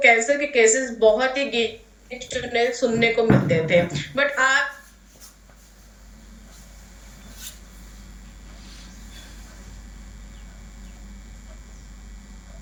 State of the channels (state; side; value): identical; both; correlation 1.00